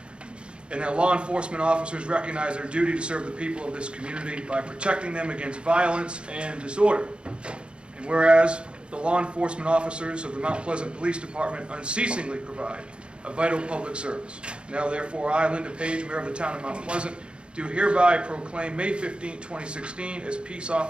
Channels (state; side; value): late; left; 0.055 ms